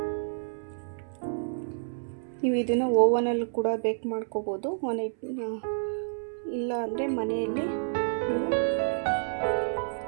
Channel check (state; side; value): silent; left; 58 dB below the other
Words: ನೀವು ಇದನ್ನು ಓವನಲ್ಲಿ ಕೂಡ ಬೇಕ್ ಮಾಡ್ಕೋಬೋದು. ಇಲ್ಲ ಅಂದರೆ ಮನೆಯಲ್ಲಿ ನೀವು